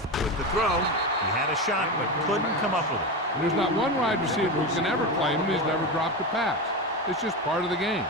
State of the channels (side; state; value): both; normal; correlation 0.19